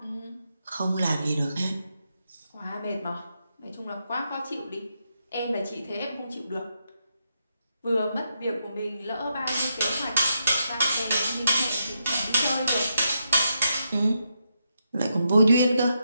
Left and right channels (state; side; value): inverted; both; correlation -0.82